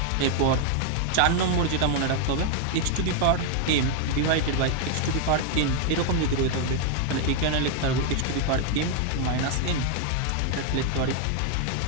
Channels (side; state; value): both; different; correlation 0.00